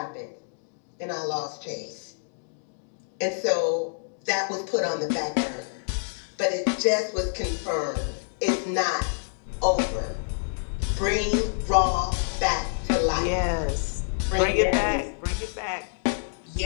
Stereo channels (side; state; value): right; silent; digital silence